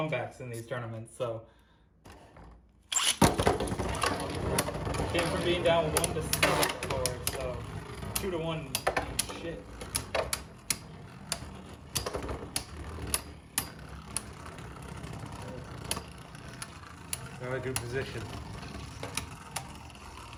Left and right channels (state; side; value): identical; both; correlation 1.00